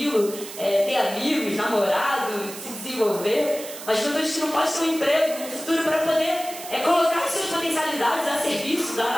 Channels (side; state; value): right; noise; hiss, 12 dB below the sound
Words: ter amigos, namorado, se desenvolver. Uma juventude que não pode ter um emprego no futuro para poder colocar suas potencialidades a serviço